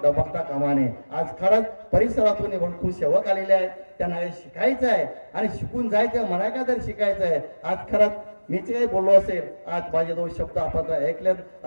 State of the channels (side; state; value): both; inverted; correlation -1.00